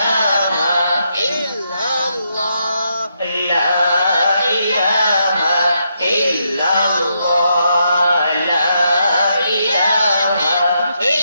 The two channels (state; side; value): inverted; both; correlation -0.80